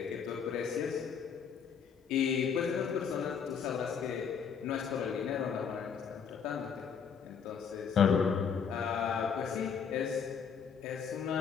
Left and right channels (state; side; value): quieter; right; 6.9 dB